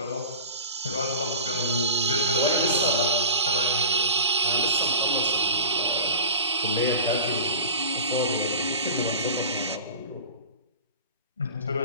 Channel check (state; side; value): inverted; both; correlation -0.34